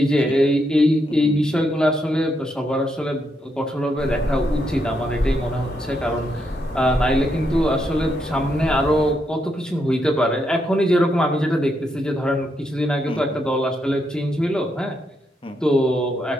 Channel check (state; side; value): normal; both; correlation 0.80